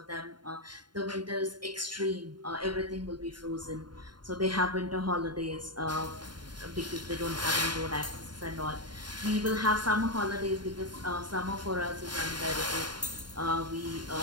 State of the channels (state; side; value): late; left; 0.71 ms